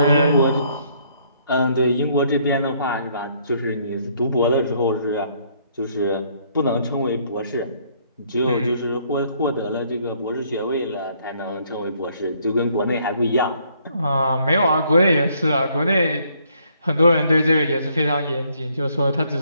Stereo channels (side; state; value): both; inverted; correlation -0.67